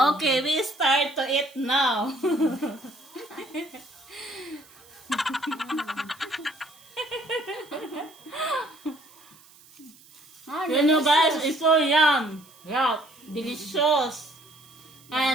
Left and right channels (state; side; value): noise; right; hiss, 25 dB below the sound